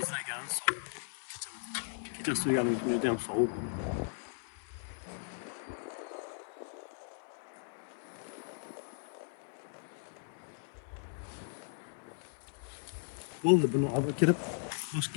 sovuq. Kecha suyganim juda ham sovuq. Bo'ldi, buni olib kirib, boshqa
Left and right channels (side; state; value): right; silent; digital silence